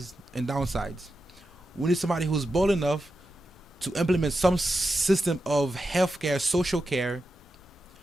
We need somebody who's bold enough to implement some system of healthcare, social care,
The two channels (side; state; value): both; normal; correlation 0.89